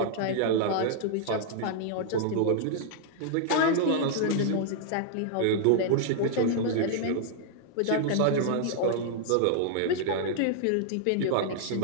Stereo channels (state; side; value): different; both; correlation -0.01